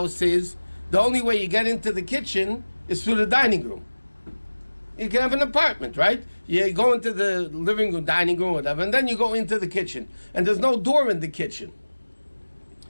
is the only way you get into the kitchen is through the dining room? You can have an apartment, right? You go into the living room, dining room, whatever, and then you go into the kitchen. And there's no door in the kitchen.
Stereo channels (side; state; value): both; inverted; correlation -1.00